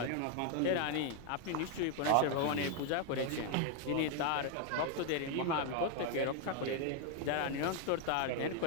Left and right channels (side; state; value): both; different; correlation 0.01